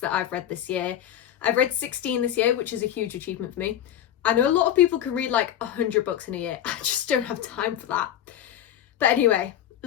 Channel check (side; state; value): right; quieter; 10.9 dB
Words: I've read this year. I've read 16 this year, which is a huge achievement for me. I know a lot of people can read like 100 books in a year. I just don't have time for that. But anyway,